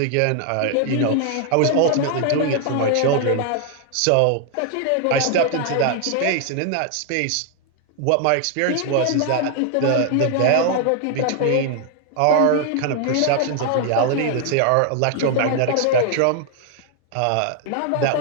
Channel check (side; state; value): both; different; correlation 0.00